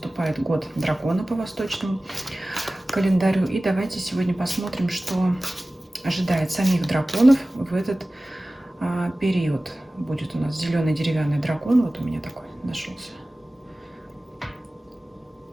год дракона по восточному календарю. И давайте сегодня посмотрим, что ожидает самих драконов в этот период. Будет у нас зеленый деревянный дракон. Вот у меня такой нашелся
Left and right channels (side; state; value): both; normal; correlation 0.97